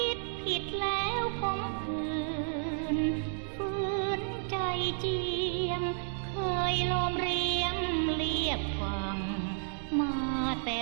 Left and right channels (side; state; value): left; silent; digital silence